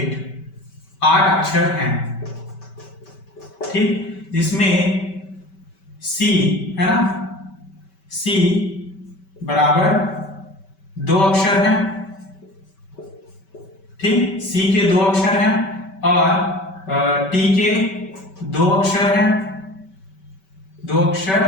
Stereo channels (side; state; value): right; late; 5.2 ms